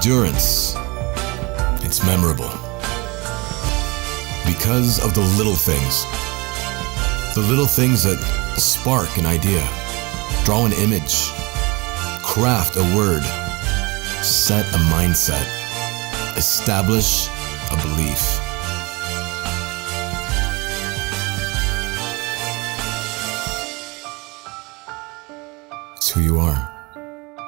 It's memorable because of the little things. The little things that spark an idea, draw an image, craft a word, set a mindset, establish a belief. It's who you are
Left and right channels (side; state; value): left; quieter; 24.8 dB